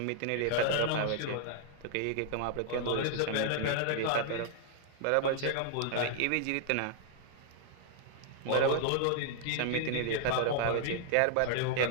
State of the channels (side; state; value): both; different; correlation 0.00